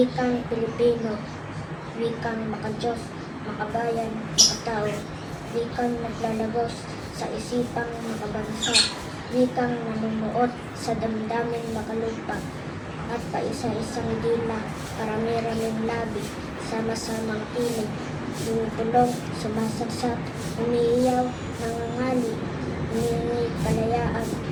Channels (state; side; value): identical; both; correlation 1.00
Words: Pilipino, wikang makadiyos, makabayan, makatao. Wikang naglalagos sa isipang makabansa. Wikang namumuot sa damdaming makalupa. At paisa-isang dila, parami-raming labi, sama-samang tinig, tumutulong, sumasagsak, umiiyaw, nangangali, humingi kalayaan,